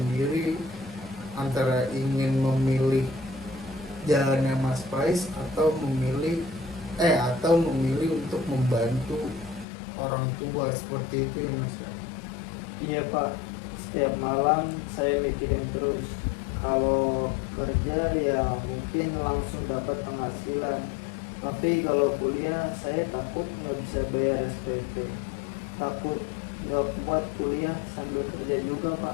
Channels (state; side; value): drops out; right; at 9.7 s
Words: antara ingin memilih jalannya Mas Pais atau memilih untuk membantu orang tua seperti itu ya Mas. Iya, Pak. Setiap malam saya mikirin terus. Kalau kerja ya mungkin langsung dapat penghasilan. Tapi kalau kuliah saya takut nggak bisa bayar SPP. Takut nggak kuat kuliah sambil kerja juga,